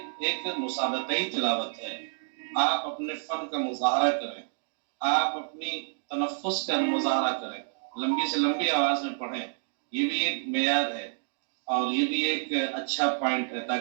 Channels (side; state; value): left; silent; digital silence